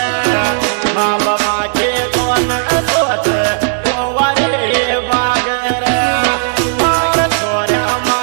माँ बापा के कौन सोच कुंवारे बागरे और छोरा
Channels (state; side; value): silent; left; digital silence